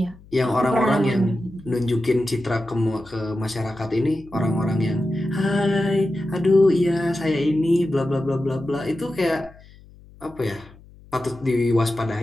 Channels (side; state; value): left; noise; hum, 23 dB below the sound